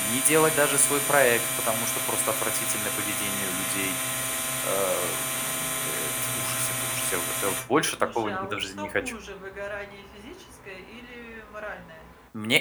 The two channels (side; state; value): both; identical; correlation 1.00